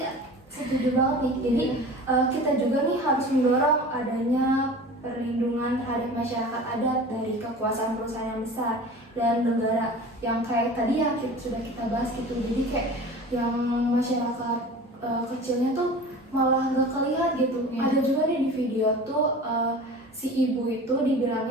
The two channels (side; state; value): both; normal; correlation 0.38